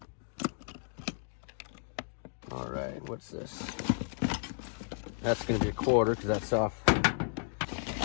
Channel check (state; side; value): silent; right; 56 dB below the other